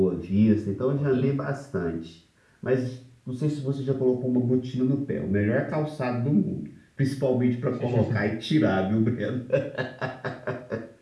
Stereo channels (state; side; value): identical; both; correlation 1.00